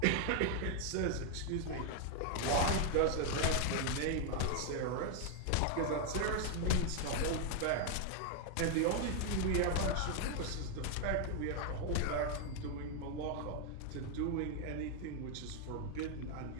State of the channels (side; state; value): both; different; correlation 0.00